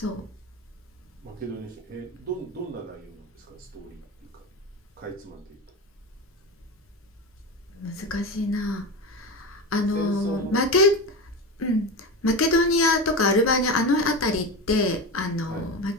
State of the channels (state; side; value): normal; both; correlation 0.22